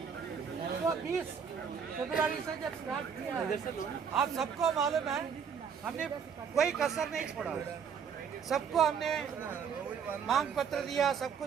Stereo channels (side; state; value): left; quieter; 6.9 dB